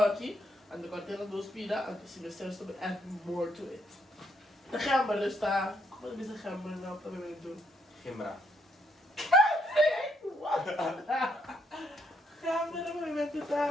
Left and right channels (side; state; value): both; normal; correlation 0.73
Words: En de container 2 pida. En dus je zelfs to add more to it. De gember dus daar. Wat is de gember nou dat we doen? Gimbra. What? Gember, dat we met